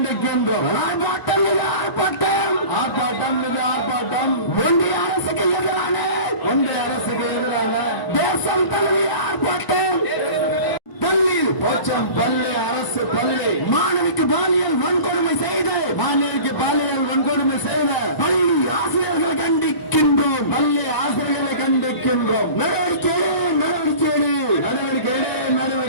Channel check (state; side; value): late; right; 1.0 ms